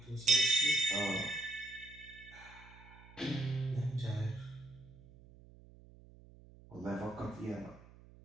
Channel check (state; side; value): noise; right; hum, 21 dB below the sound